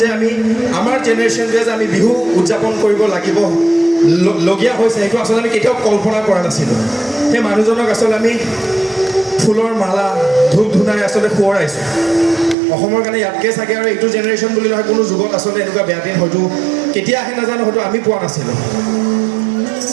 আমি আমাৰ জেনেৰেশ্যনটোৱে যে আমি বিহু উদযাপন কৰিব লাগিব লগীয়া হৈছে সেইটো আচলতে আমি কেতিয়াও কল্পনা কৰা নাছিলোঁ সেই মানুহজনক আচলতে আমি ফুলৰ মালা ধূপ ধূনাই আচলতে সোঁৱৰাইছোঁ অসমৰ কাৰণে ইয়াতকৈ চাগে আৰু এইটো জেনেৰেশ্যন বুলি নহয় কোনো যুগত আচলতে এনেকুৱা বেয়া দিন হয়তো কেতিয়া আহে নাজানো হয়তো আমি পোৱা নাছিলোঁ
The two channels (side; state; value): left; drops out; at 12.6 s